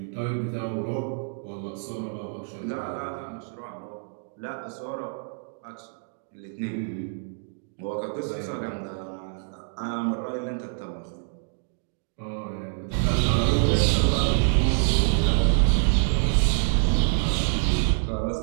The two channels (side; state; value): left; silent; digital silence